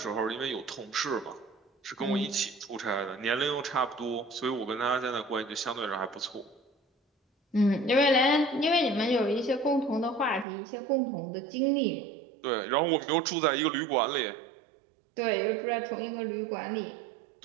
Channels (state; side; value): drops out; left; at 10.5 s